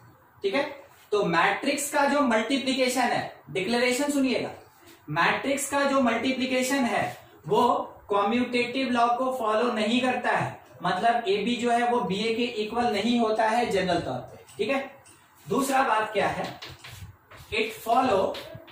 ठीक है, तो मैट्रिक्स का जो मल्टीप्लीकेशन है, डिक्लेरेशन सुनिएगा, मैट्रिक्स का जो मल्टीप्लीकेशन है वो कॉम्यूटेटिव लॉ को फॉलो नहीं करता है। मतलब ए बी जो है वो बी ए के इक्वल नहीं होता है जनरल तौर पे। ठीक है, दूसरा बात क्या है, इट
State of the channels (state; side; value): identical; both; correlation 1.00